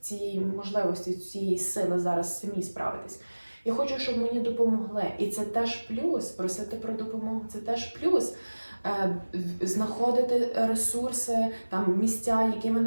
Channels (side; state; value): both; inverted; correlation -1.00